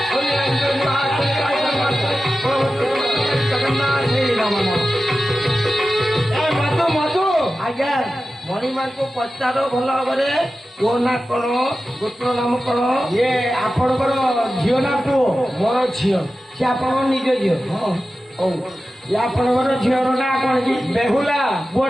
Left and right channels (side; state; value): both; normal; correlation 0.94